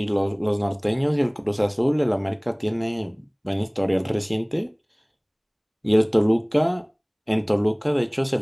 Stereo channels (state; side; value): identical; both; correlation 1.00